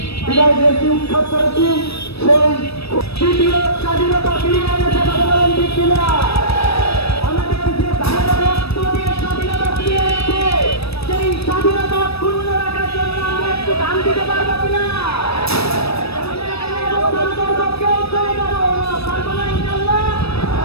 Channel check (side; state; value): right; late; 0.78 ms